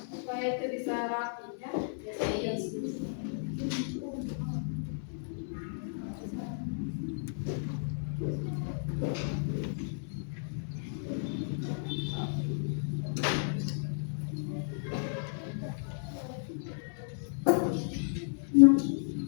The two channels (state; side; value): silent; right; 56 dB below the other